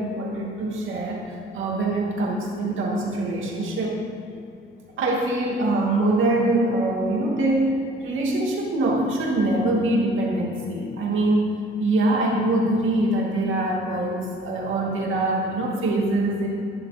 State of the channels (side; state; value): both; normal; correlation 0.51